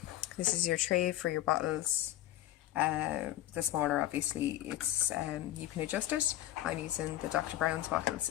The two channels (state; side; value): quieter; right; 13.8 dB